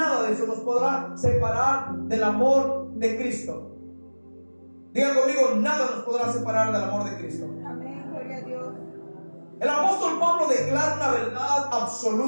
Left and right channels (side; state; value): both; inverted; correlation -1.00